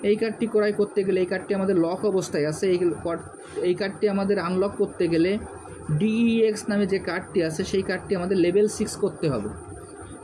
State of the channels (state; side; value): identical; both; correlation 1.00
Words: এই কার্ডটি ক্রয় করতে গেলে, এই কার্ডটি আমাদের লক অবস্থায় আছে, এই কার্ডটি আমাদের আনলক করতে গেলে DEX নামে যে কার্ডটি আছে সেই কার্ডটি আমাদের লেভেল 6 করতে হবে।